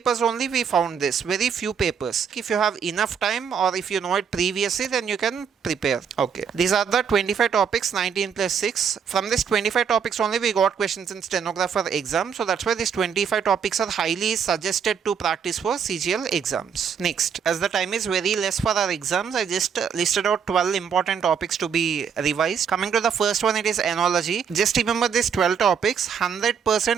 only we found this. Very few papers. If you have enough time or if you know it previously, then you can prepare. Okay. These are the 25 topics, 19 plus 6. From this 25 topics only we got questions in stenographer exam. So that's why these 25 topics are highly suggested to practice for CGL exams. Next, as the time is very less for our exams, I just listed out 12 important topics to be revised. Coming to the first one, it is enology. Just remember these 12 topics.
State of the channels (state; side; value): quieter; left; 7.1 dB